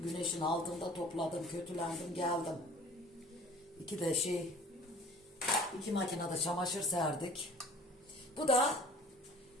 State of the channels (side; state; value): both; normal; correlation 0.48